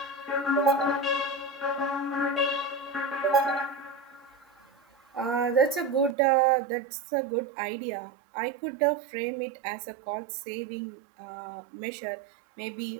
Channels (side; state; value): left; drops out; at 6.2 s